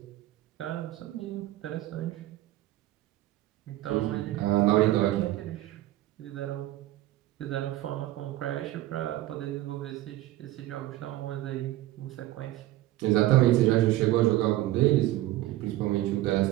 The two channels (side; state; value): left; quieter; 15.6 dB